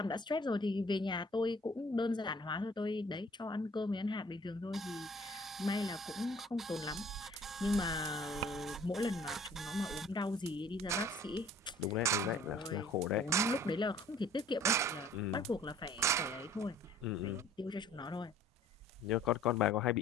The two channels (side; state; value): both; normal; correlation 0.53